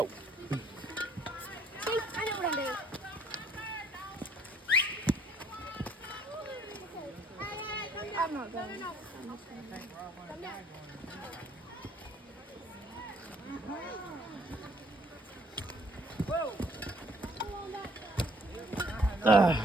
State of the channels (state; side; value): normal; both; correlation 0.62